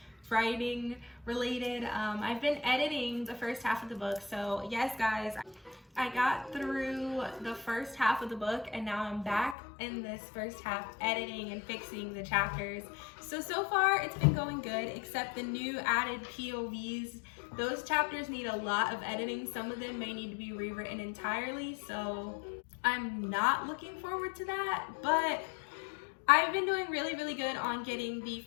writing related. I've been editing the first half of the book, so yes guys, I got through the first half of the book and now I'm back in this first half editing and fixing the chapters. So far it's been going good, except the new added POVs. Those chapters need a lot of editing. Some of them may need to be rewritten entirely, so I'm not looking forward to that, but I've been doing really good on getting the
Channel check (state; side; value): drops out; right; at 9.6 s